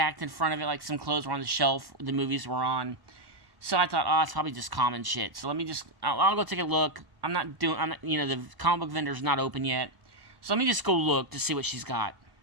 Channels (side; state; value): left; late; 1.1 ms